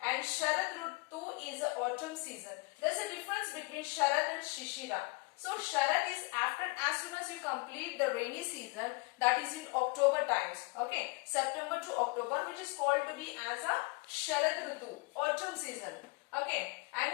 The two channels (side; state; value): right; quieter; 27.3 dB